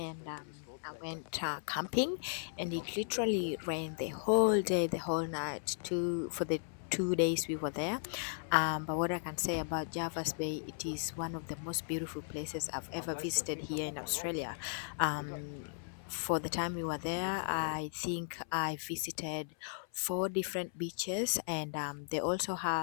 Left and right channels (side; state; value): right; silent; 54 dB below the other